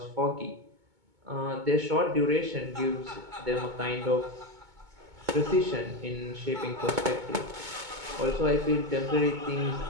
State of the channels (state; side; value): late; left; 2.2 ms